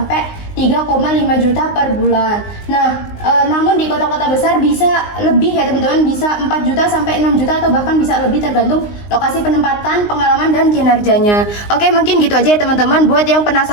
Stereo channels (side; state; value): right; late; 19 ms